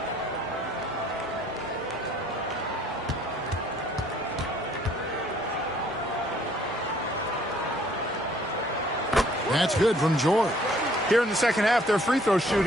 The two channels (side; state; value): both; normal; correlation 0.60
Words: That's good from George. Here in the second half, their free throw